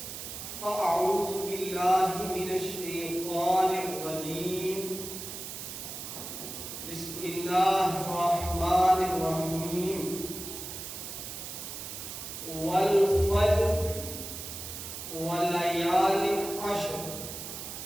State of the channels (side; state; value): right; noise; hiss, 8 dB below the sound